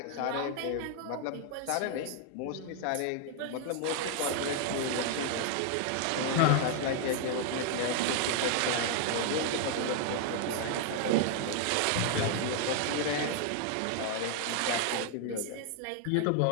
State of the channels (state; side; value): different; both; correlation 0.00